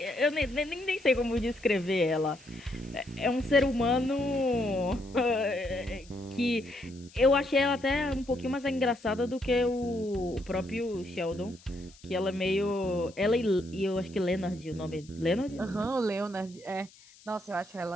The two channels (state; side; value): noise; left; hiss, 24 dB below the sound